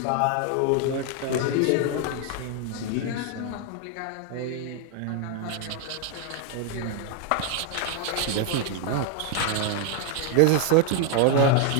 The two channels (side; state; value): both; different; correlation 0.00